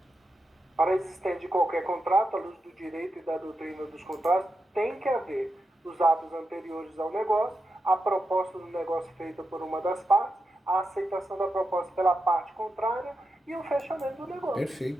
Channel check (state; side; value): normal; both; correlation 0.88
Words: Para a existência de qualquer contrato, à luz do direito e da doutrina dos contratos, tem que haver os atos anteriores ao negócio, a proposta do negócio feita por uma das partes, a aceitação da proposta pela parte contrária e o fechamento do negócio.